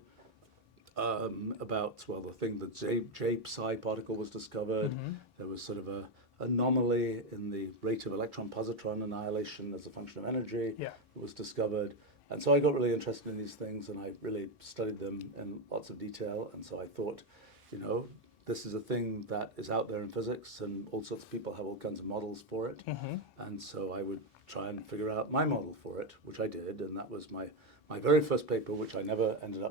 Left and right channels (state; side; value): normal; both; correlation 0.07